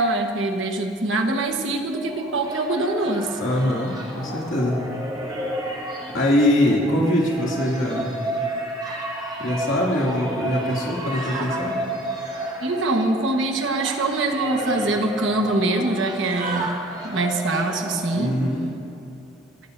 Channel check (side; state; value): both; normal; correlation 0.51